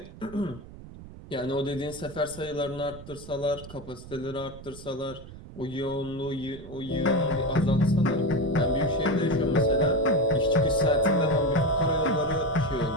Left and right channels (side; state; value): right; noise; rumble, 16 dB below the sound